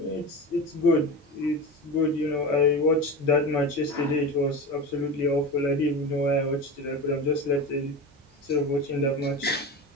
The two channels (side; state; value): both; normal; correlation 0.26